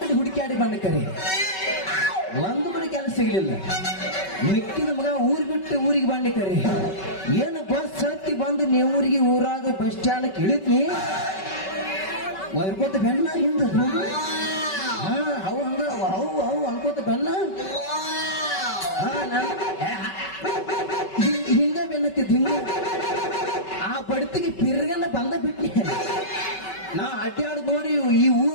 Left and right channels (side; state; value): right; late; 5.3 ms